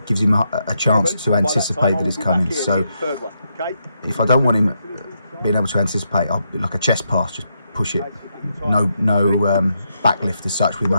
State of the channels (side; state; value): both; inverted; correlation -0.81